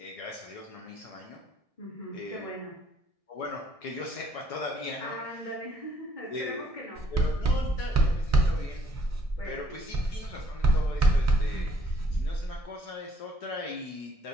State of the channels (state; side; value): late; right; 1.6 ms